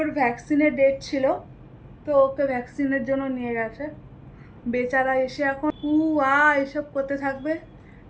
ভ্যাকসিনের ডেট ছিল, তো ওকে ভ্যাকসিনের জন্য নিয়ে গেছে। বেচারা এসে এখন এসব করতে থাকবে।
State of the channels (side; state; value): both; identical; correlation 1.00